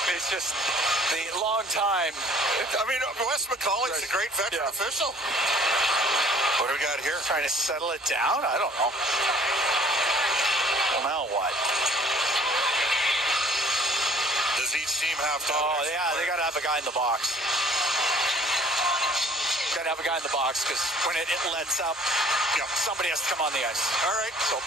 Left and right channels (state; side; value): normal; both; correlation 0.54